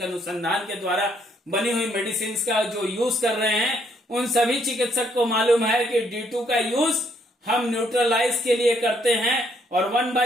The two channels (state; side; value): normal; both; correlation 0.70